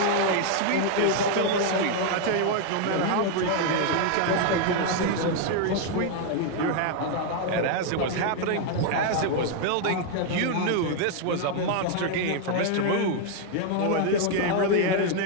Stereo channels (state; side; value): different; both; correlation 0.00